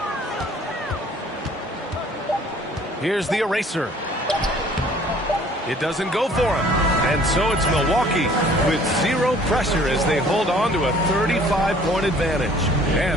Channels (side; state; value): both; normal; correlation 0.55